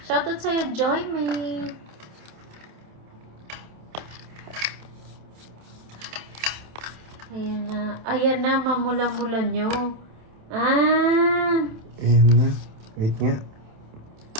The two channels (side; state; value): left; late; 27 ms